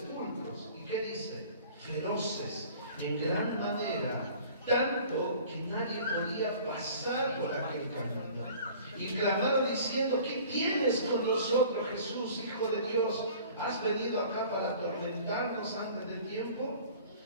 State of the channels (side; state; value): both; inverted; correlation -0.47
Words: ¿Y qué dice? Feroces, en gran manera, tanto que nadie podía pasar por aquel camino. Y clamaron diciendo: ¿qué tienes con nosotros, Jesús, Hijo de Dios? ¿Has venido acá para atormentarnos antes del tiempo?